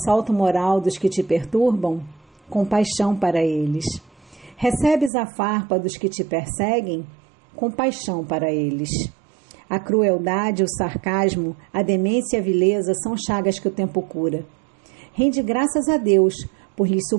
moral dos que te perturbam? Compaixão para eles. Recebes a farpa dos que te perseguem? Compaixão para eles. A crueldade, o sarcasmo, a demência e a vileza são chagas que o tempo cura. Rende graças a Deus por lhes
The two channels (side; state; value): left; drops out; at 5.1 s